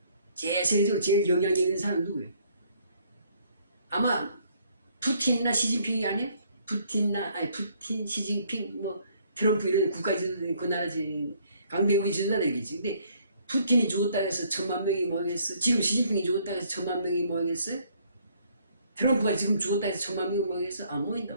세계적으로 제일 영향력 있는 사람은 누구예요? 아마 푸틴이나 시진핑이 아니에요? 푸틴, 시진핑, 뭐 트럼프 이런 국가지도들 그 나라 강대국이 지도자들이겠지. 근데 푸틴이 죽었다 해서 1000만 명이 모이겠어? 지금 시진핑이 죽었다 해서 1000만 명이 모이겠어? 트럼프가 지금 죽었다 해서 1000만 명이 모이겠어? 안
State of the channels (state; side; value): inverted; both; correlation -0.64